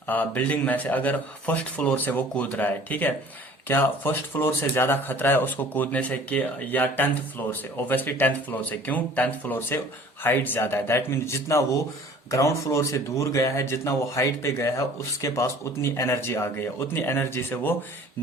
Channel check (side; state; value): both; normal; correlation 0.49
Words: बिल्डिंग में से अगर फर्स्ट फ्लोर से वो कूद रहा है, ठीक है, क्या फर्स्ट फ्लोर से ज्यादा खतरा है उसको कूदने से कि या 10th फ्लोर से? ऑब्वियसली 10th फ्लोर से। क्यों? 10th फ्लोर से हाइट ज्यादा है, दैट मीन्स जितना वो ग्राउंड फ्लोर से दूर गया है, जितना वो हाइट पे गया है, उसके पास उतनी एनर्जी आ गई है, उतनी एनर्जी से वो